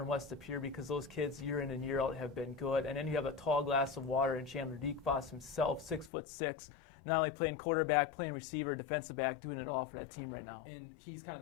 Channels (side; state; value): right; drops out; at 6.1 s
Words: West De Pere because those kids year in and year out have been good. And then you have a tall glass of water in Chandler Voss himself, 6'6", not only playing quarterback, playing receiver, defensive back, doing it all for that team right now. And he's kind of